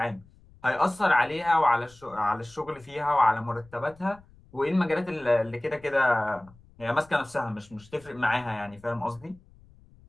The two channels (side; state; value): left; noise; rumble, 26 dB below the sound